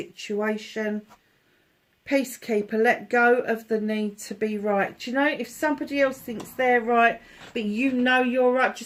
Peacekeeper, let go of the need to be right. Do you know, if somebody else thinks they're right, but you know you're right,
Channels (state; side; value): identical; both; correlation 1.00